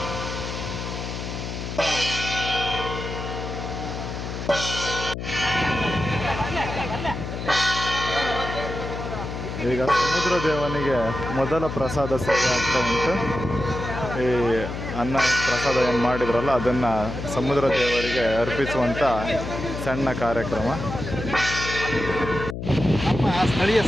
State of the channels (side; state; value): left; noise; hum, 6 dB below the sound